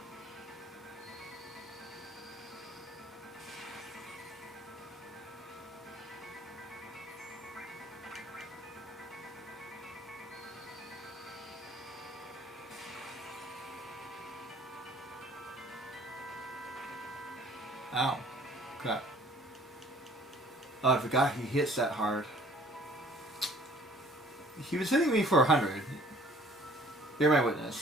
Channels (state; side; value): normal; both; correlation 0.55